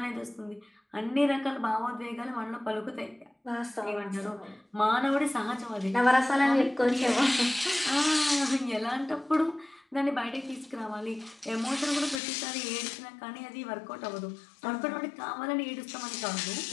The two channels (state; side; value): drops out; right; at 12.2 s